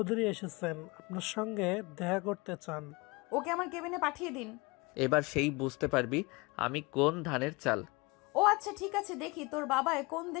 এসেছেন, আপনার সঙ্গে দেখা করতে চান। ওকে আমার কেবিনে পাঠিয়ে দিন। এবার সেই বুঝতে পারবি আমি কোন ধানের চাল। ও আচ্ছা, ঠিক আছে, দেখি তোর বাবায় কোন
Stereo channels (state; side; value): quieter; right; 25.9 dB